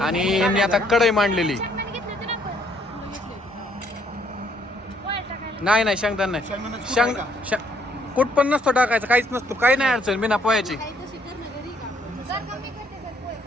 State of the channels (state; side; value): normal; both; correlation 0.67